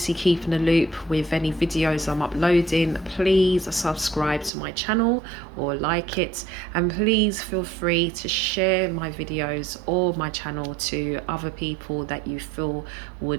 keep in the loop with any videos I'm uploading, please subscribe to my channel or like it, and please feel free to share my videos or my channel to other people that you feel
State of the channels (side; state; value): left; drops out; at 4.5 s